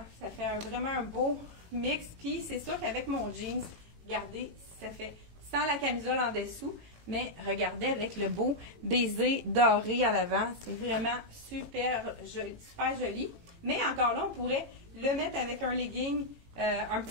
Ça fait vraiment un beau mix. Puis c'est sûr qu'avec mon jeans, regardez, ça fait sans la camisole en dessous, mais regardez avec le beau baiser doré à l'avant. C'est vraiment super joli. Mais encore là, on pourrait le mettre avec un legging, un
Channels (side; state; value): left; late; 18 ms